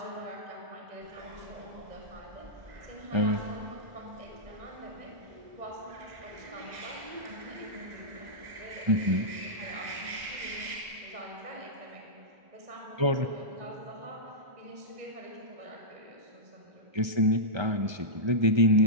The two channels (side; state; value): left; late; 1.3 ms